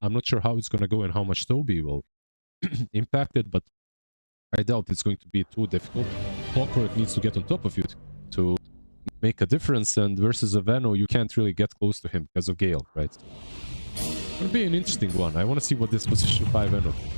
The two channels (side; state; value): both; inverted; correlation -1.00